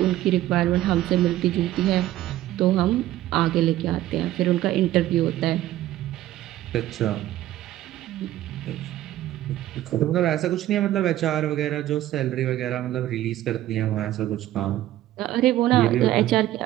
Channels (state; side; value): quieter; left; 14.2 dB